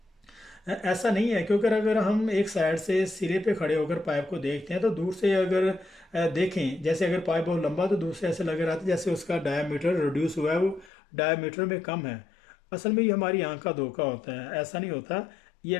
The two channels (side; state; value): right; drops out; at 10.9 s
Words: ऐसा नहीं है, क्योंकि अगर हम एक साइड से सिरे पे खड़े होकर पाइप को देखते हैं तो दूर से अगर देखें, जैसे अगर पाइप बहुत लंबा तो दूर से ऐसे लग रहा था जैसे उसका डायमीटर रिड्यूस हुआ है, वो डायमीटर में कम है। असल में ये हमारी आंख का धोखा होता है, ऐसा नहीं होता। ये